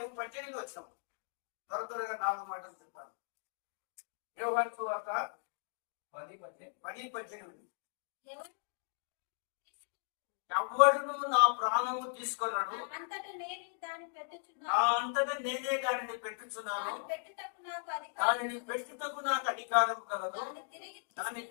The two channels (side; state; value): right; silent; digital silence